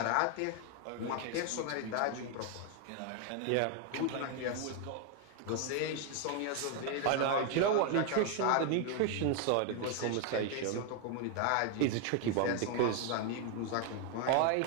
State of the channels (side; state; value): both; different; correlation 0.01